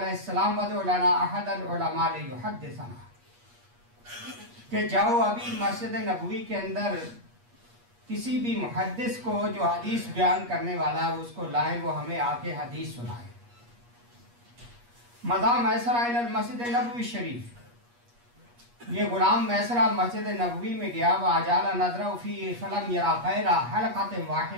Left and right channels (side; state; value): left; late; 8.4 ms